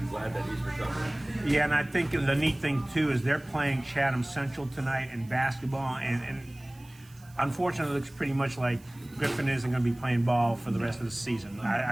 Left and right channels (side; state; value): right; noise; hiss, 26 dB below the sound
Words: Glad that he's recovering. Yeah, and I think the neat thing too is they're playing Chatham Central tonight in basketball, and unfortunately, it looks pretty much like Griffin isn't going to be playing ball for the rest of the season.